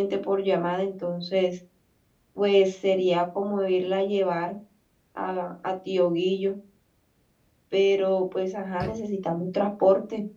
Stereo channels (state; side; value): identical; both; correlation 1.00